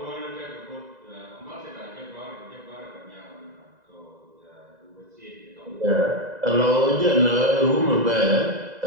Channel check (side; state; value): left; late; 2.0 ms